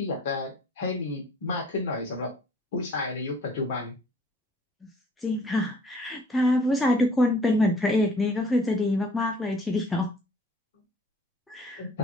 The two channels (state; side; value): normal; both; correlation 0.56